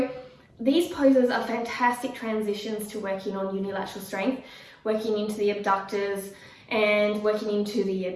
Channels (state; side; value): identical; both; correlation 1.00